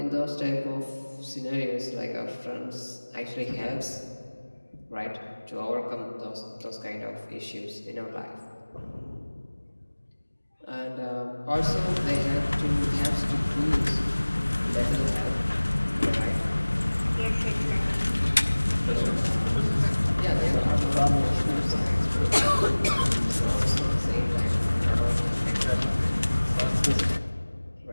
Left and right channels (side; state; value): both; inverted; correlation -1.00